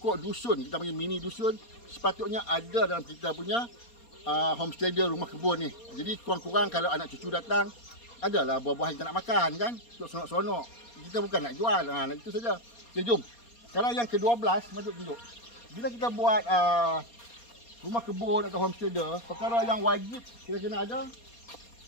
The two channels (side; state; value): right; late; 4.2 ms